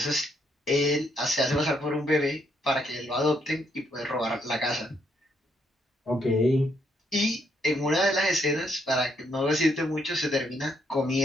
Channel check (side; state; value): both; normal; correlation 0.74